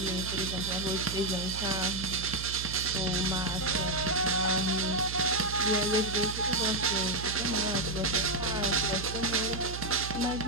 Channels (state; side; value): noise; right; hum, 8 dB below the sound